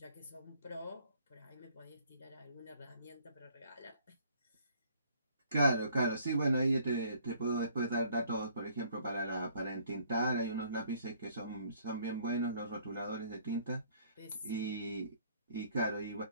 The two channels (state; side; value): inverted; both; correlation -0.60